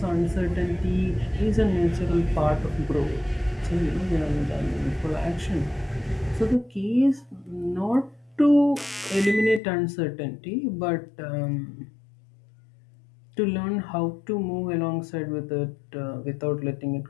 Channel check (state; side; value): drops out; right; at 9.6 s